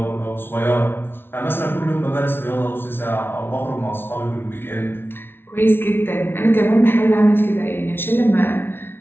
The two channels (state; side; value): late; right; 0.11 ms